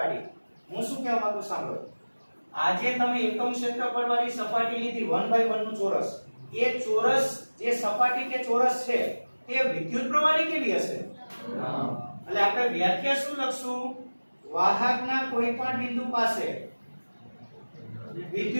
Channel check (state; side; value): inverted; both; correlation -1.00